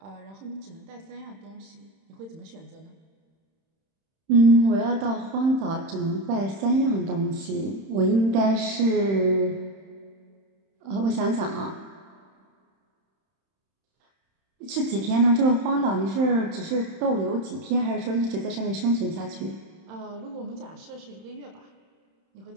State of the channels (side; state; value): left; late; 31 ms